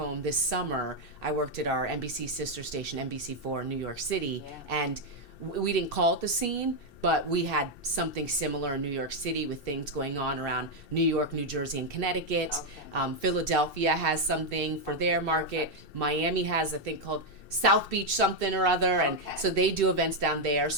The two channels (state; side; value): late; right; 2.6 ms